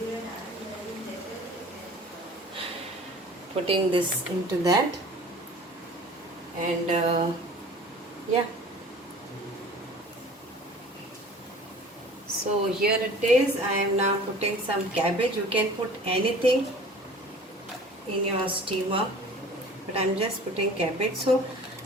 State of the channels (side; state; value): both; normal; correlation 0.45